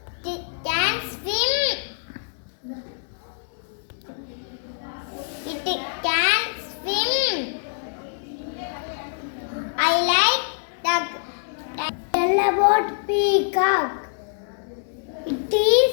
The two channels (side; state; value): right; silent; digital silence